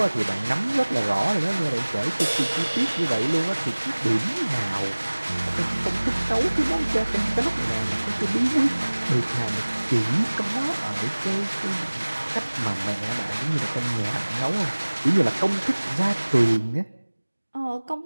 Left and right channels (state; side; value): inverted; both; correlation -1.00